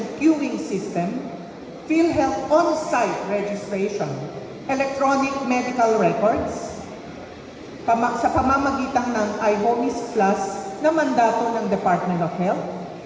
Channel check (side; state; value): both; identical; correlation 1.00